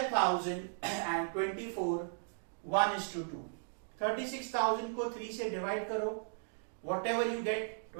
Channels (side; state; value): left; silent; digital silence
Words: and 24. 1:2. 36,000 को 3 से divide करो. Whatever you get,